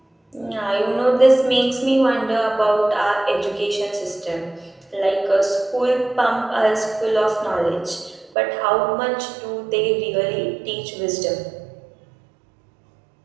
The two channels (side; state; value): left; drops out; at 8.3 s